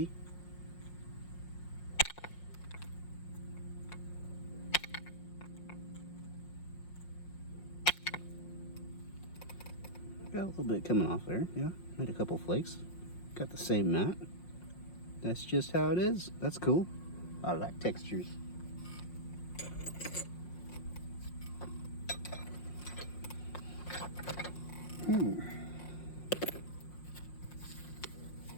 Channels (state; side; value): late; right; 5.6 ms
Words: Got a little bit coming off there, yeah. Made a couple flakes. Got the same mat. That's just how it is. That's cool. I like textures.